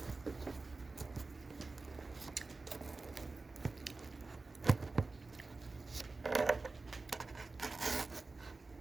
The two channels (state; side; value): quieter; left; 3.7 dB